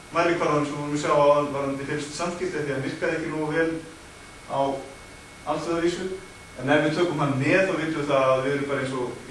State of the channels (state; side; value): identical; both; correlation 1.00